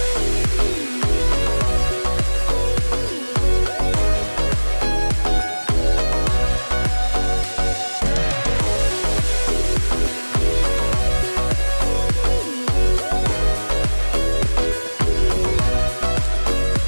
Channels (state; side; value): inverted; both; correlation -1.00